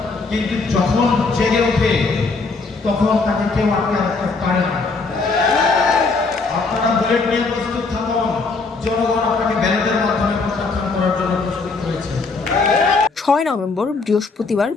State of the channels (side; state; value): right; quieter; 4.1 dB